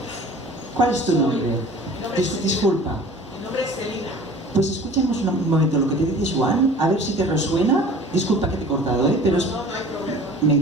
¿Cuál es tu nombre? Disculpa. Mi nombre es Celina. Pues escuchemos un momento lo que te dice Joan, a ver si te resuena. Disculpa que te he cortado, pero No hay problema. me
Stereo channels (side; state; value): both; normal; correlation 0.45